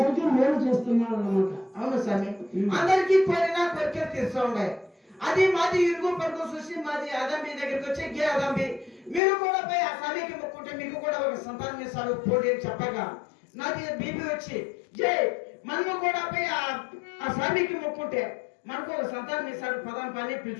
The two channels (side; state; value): right; drops out; at 9.2 s